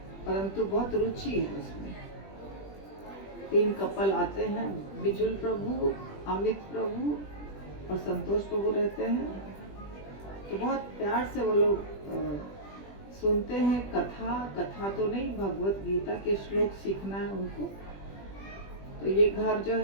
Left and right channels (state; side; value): late; right; 20 ms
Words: परंतु बहुत रुचि है उसमें। 3 कपल आते हैं, बिजुल प्रभु, अमित प्रभु और संतोष प्रभु रहते हैं। तो बहुत प्यार से वो लोग सुनते हैं कथा तो नहीं, भगवत गीता के श्लोक सीखना है उनको। तो ये घर जो